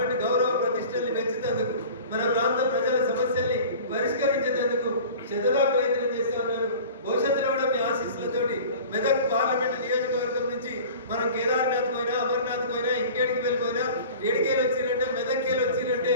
గౌరవ ప్రతిష్టల్ని పెంచుతందుకు, మన ప్రాంత ప్రజల సమస్యల్ని పరిష్కరించేందుకు శతగా ప్రయత్నం చేస్తా ఉన్నాను. భవిష్యత్తులో కూడా మీ ఆశీస్సులతోటి మెదక్ పార్లమెంట్ నియోజకవర్గం నుంచి మనం కేదార్నాథ్ పోయినా, అమర్నాథ్ పోయినా, ఇంకేడికి వెళ్ళిపోయినా, ఏడికేలు వచ్చిరంటే, మెదక్కేలు వచ్చిరంటే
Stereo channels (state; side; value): inverted; both; correlation -0.41